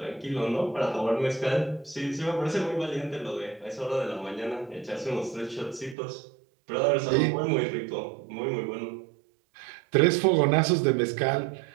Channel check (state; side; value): drops out; left; at 6.0 s